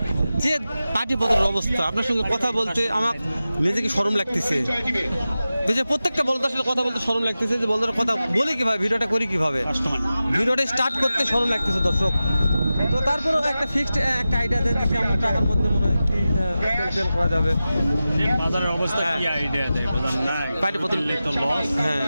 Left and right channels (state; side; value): inverted; both; correlation -0.94